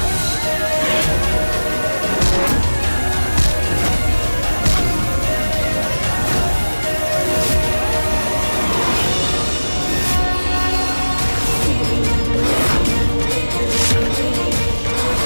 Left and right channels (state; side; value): inverted; both; correlation -1.00